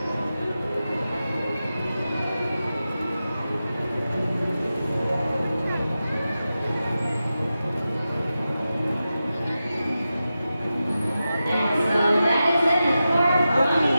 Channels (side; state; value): both; inverted; correlation -0.92